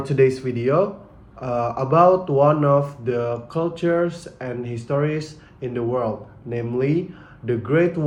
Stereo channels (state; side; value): identical; both; correlation 1.00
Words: today's video about one of the cultures and histories in the world, namely the Great